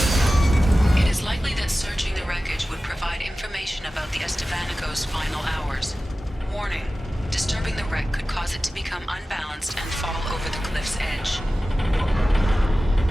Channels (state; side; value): normal; both; correlation 0.95